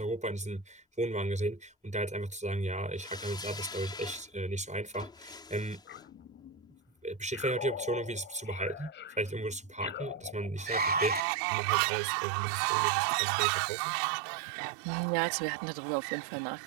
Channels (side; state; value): left; drops out; at 11.2 s